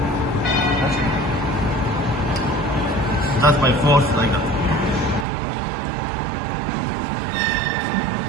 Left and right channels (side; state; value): left; drops out; at 5.2 s